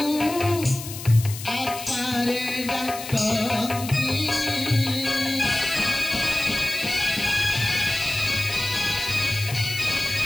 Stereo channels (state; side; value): noise; left; hiss, 11 dB below the sound